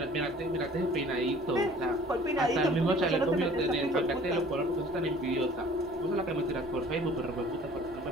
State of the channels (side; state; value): both; normal; correlation 0.51